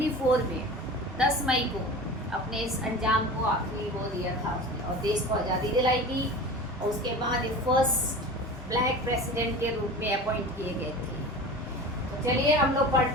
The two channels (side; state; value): both; normal; correlation 0.35